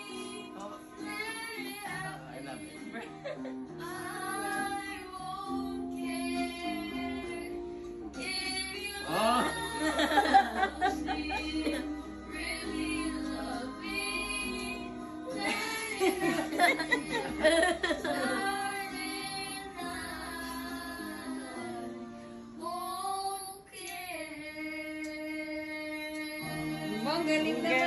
Oh. I love it. Oh. Ang galing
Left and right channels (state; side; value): identical; both; correlation 1.00